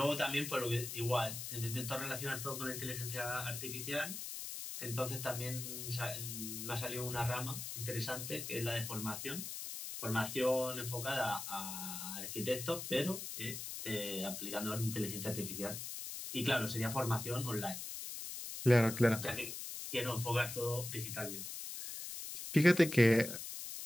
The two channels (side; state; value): left; noise; hiss, 7 dB below the sound